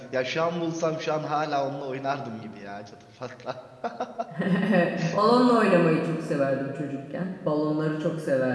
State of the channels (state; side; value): identical; both; correlation 1.00